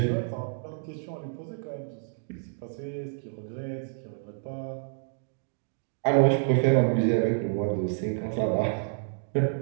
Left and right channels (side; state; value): left; silent; digital silence